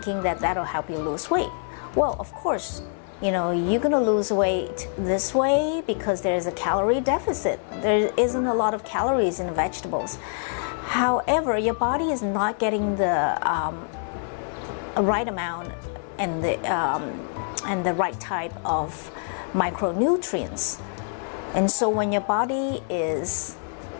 that that'll help you lose weight. Well, of course, you're gonna lose weight this way because there's a calorie deficit. There isn't a lot of calories in vegetables. However, your body is not getting the right amount and the right type of micronutrients. And so when your body is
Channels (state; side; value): silent; right; 59 dB below the other